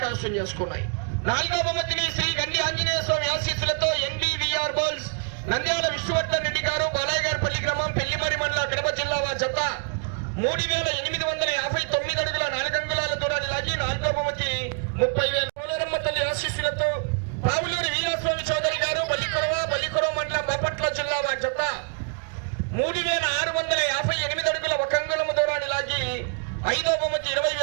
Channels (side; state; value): left; quieter; 37.2 dB